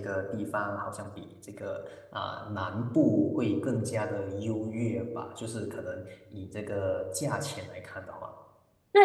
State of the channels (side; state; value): both; identical; correlation 1.00